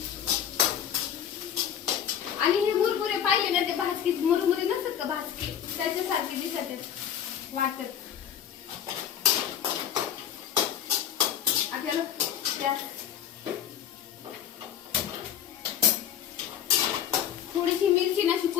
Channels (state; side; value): quieter; right; 9.5 dB